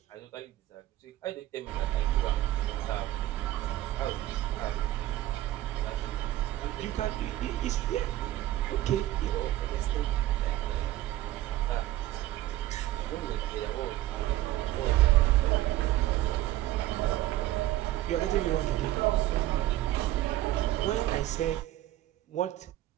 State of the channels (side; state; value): left; quieter; 15.1 dB